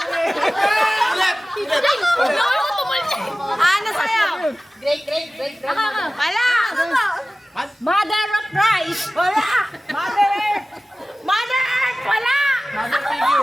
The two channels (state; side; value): normal; both; correlation 0.97